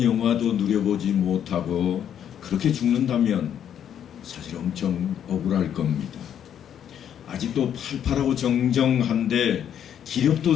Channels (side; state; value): right; quieter; 9.4 dB